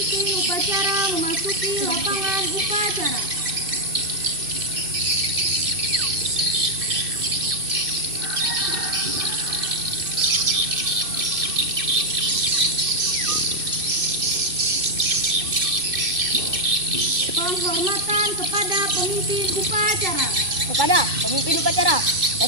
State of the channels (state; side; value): late; left; 2.6 ms